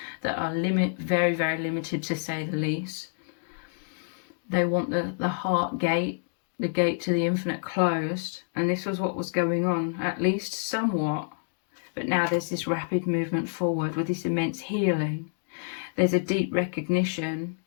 that are very, very limited, to say the least. They want the heart gate, the gate to the infinite, closed. And this was what was going on, at least somewhat. But now there's this rapid movement forward with this immense healing. There's a deep recognition.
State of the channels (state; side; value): silent; right; digital silence